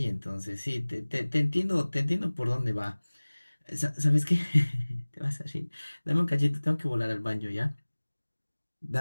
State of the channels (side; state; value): both; inverted; correlation -1.00